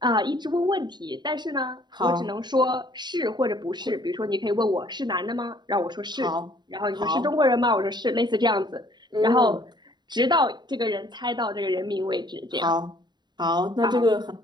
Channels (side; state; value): left; late; 0.21 ms